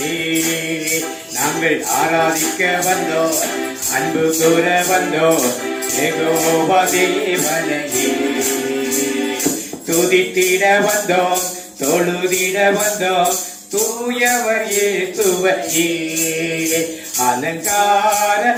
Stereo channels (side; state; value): both; identical; correlation 1.00